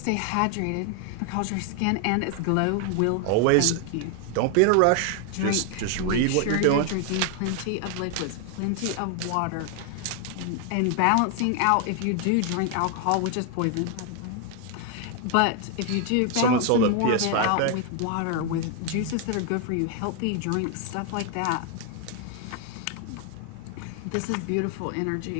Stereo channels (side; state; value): both; different; correlation 0.00